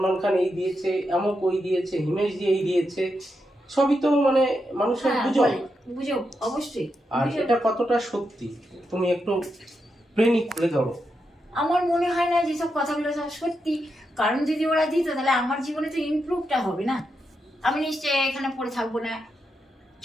খান এই দিয়েছে, এমক ওই দিয়েছে, হিমেশ জি এই দিয়েছে, সবই তো মানে মানুষের গুজব। গুজব অবশ্যই। আর এটা কতটা সত্যি তুমি একটু প্রেমিক করে ধরো। আমার মনে হয় না যেসব কথাগুলো সব সত্যি, কারণ যদি ওরা দিত তাহলে আমার জীবনে তো ইমপ্রুভটা হবে না। আমি নিশ্চয়ই এখানে পড়ে থাকবো না।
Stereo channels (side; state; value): both; normal; correlation 0.85